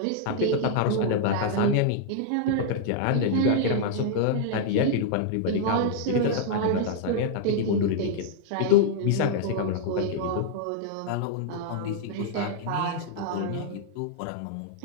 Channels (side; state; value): both; different; correlation -0.01